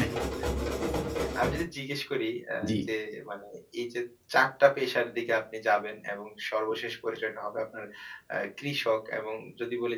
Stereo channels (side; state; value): both; identical; correlation 1.00